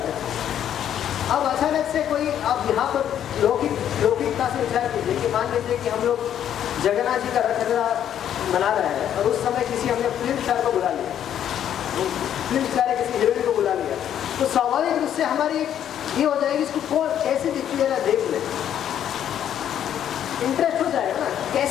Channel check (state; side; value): quieter; right; 10.0 dB